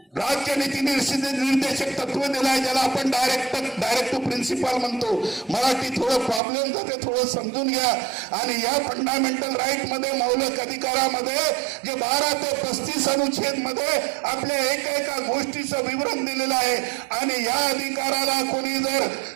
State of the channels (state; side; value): drops out; left; at 6.4 s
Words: राज्य नीती निर्देशक तत्व दिलाय, ज्याला आपण डायरेक्ट प्रिन्सिपल म्हणतो. मराठी थोडं प्रॉब्लेम जाते, थोडं समजून घ्या. आणि या फंडामेंटल राईट मध्ये मौलिक अधिकारामध्ये जे 12 ते 35 अनुच्छेद मध्ये आपल्या एका गोष्टीचं विवरण दिलेलं आहे. आणि या अधिकाराला कोणी जर